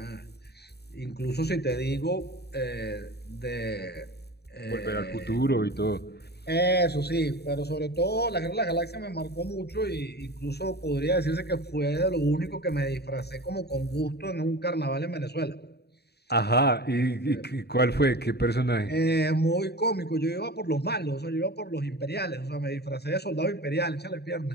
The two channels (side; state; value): right; late; 0.48 ms